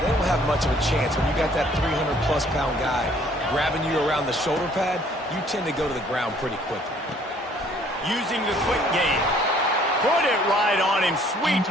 don't have much of a chance when you got that 300-plus pound guy grabbing you around the shoulder pad. You tend to go to the ground pretty quickly. Using the quick game. Put it right on him. Sweet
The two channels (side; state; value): both; normal; correlation 0.59